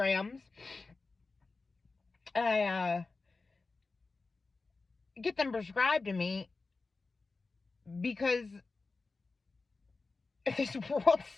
I get them prescribed to me because this world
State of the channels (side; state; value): right; quieter; 3.9 dB